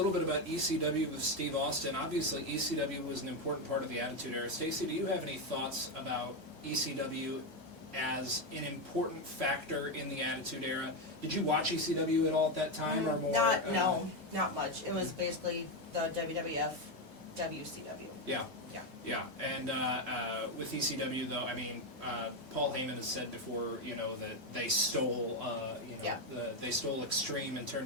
bit about ECW with Steve Austin. Obviously, ECW was an important part of the Attitude Era. Stacy, do you have any thoughts about ECW as an important factor in the Attitude Era? Did you watch ECW at all at that time, or more? Not much. It was basically the WWF, WCW. Yeah. Yeah. And with ECW, though, I mean, Paul Heyman has said before, that they stole, they stole Extreme and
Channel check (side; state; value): left; late; 1.6 ms